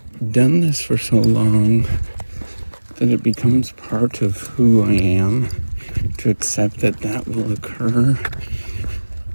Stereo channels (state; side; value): inverted; both; correlation -1.00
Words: done this for so long that it becomes part of who I am, to accept that will occur.